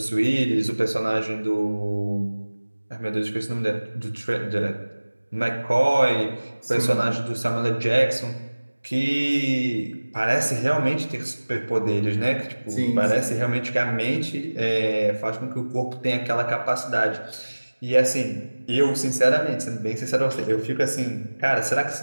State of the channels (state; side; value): inverted; both; correlation -1.00